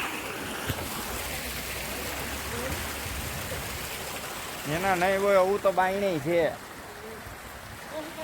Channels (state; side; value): identical; both; correlation 1.00